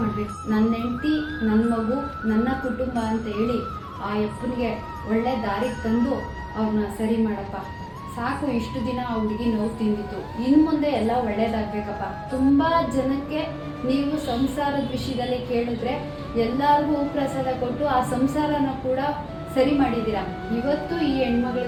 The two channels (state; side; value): identical; both; correlation 1.00